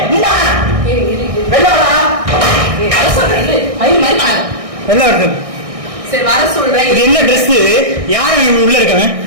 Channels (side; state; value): left; late; 1.6 ms